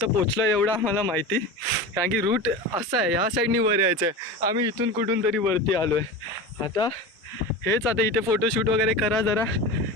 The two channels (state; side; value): normal; both; correlation 0.28